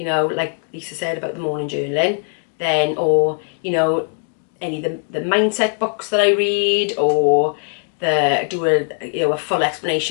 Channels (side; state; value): right; silent; 60 dB below the other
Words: know, like Lisa said about the morning journaling, then, or, you know, any of the mindset books that I read, or do a full